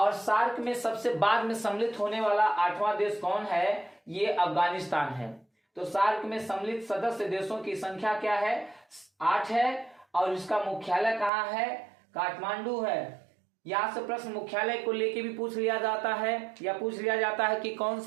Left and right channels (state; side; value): drops out; left; at 11.3 s